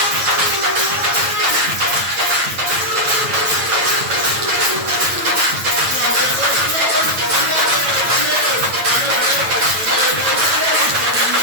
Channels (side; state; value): left; late; 9.0 ms